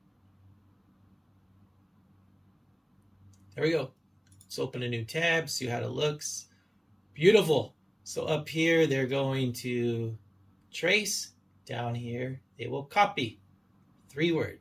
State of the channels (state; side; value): identical; both; correlation 1.00